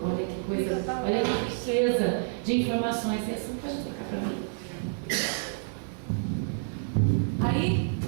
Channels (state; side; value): silent; left; digital silence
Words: Olha que coisa, olha que riqueza de informações. Essa não pode trocar para mim. Aí,